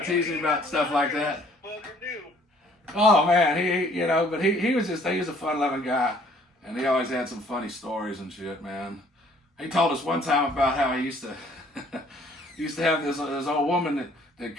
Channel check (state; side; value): normal; both; correlation 0.59